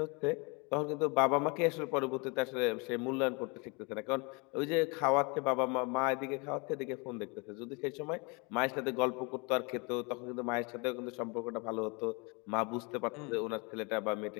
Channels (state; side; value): quieter; right; 30.4 dB